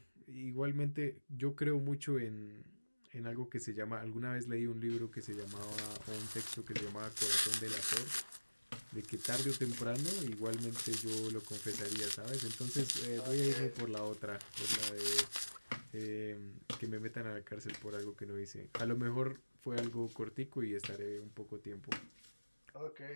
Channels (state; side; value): inverted; both; correlation -1.00